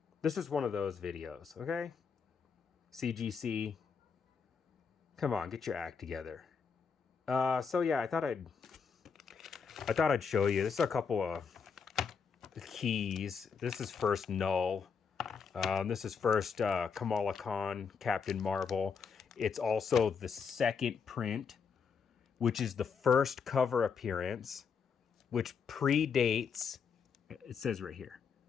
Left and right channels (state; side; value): quieter; right; 6.0 dB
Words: This is one of those videos, okay? CGC, come on, get your act together. So yeah, I thought I'd show you. This is a couple of keys. This is first Null. This is first Kamala Khan, Captain Marvel. It's also the second print, which is the first cover appearance, which predates, it says right here,